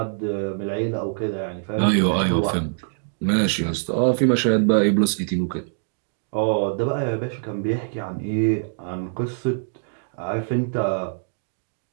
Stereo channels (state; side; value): silent; left; digital silence